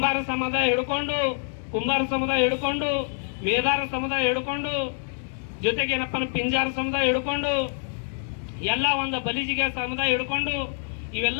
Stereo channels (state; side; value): silent; right; 61 dB below the other